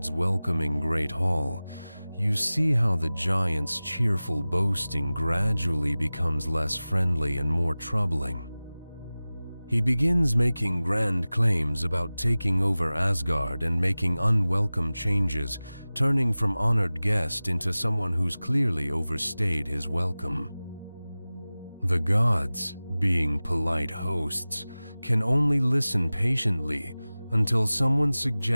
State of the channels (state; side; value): inverted; both; correlation -0.98